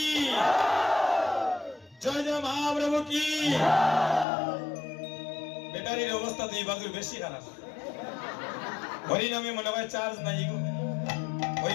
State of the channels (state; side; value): drops out; right; at 4.2 s